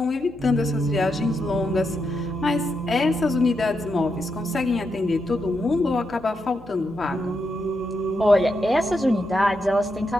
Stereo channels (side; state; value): left; noise; hum, 22 dB below the sound